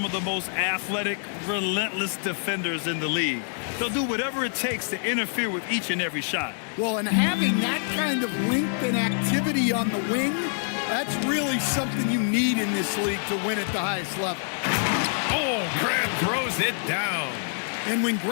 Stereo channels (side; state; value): right; silent; 61 dB below the other